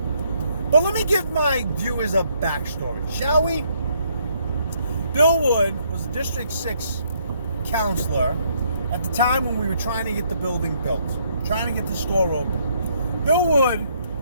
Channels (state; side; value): inverted; both; correlation -0.71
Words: But let me give my viewers a backstory, shall we? Bill Wood was a District 6 counselor at the time when we were trying to get the building built, trying to get the store open. Bill Wood